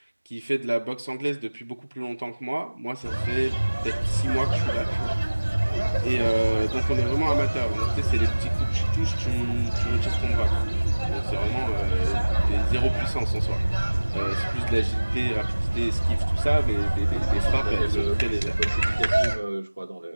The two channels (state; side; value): inverted; both; correlation -1.00